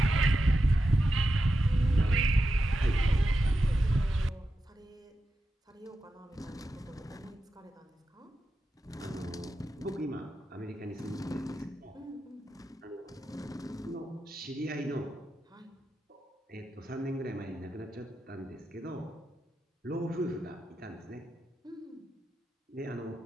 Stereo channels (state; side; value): normal; both; correlation 0.89